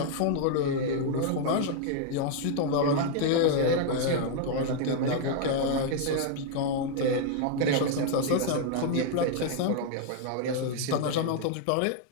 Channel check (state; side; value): different; both; correlation 0.00